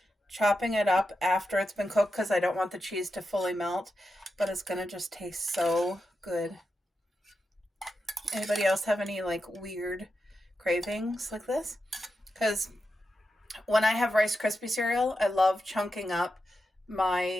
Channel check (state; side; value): normal; both; correlation 0.88